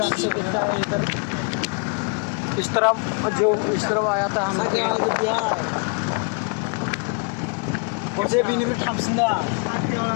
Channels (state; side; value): quieter; right; 37.8 dB